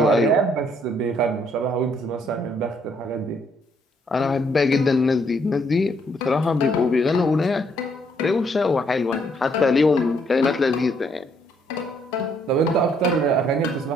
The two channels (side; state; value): both; normal; correlation 0.69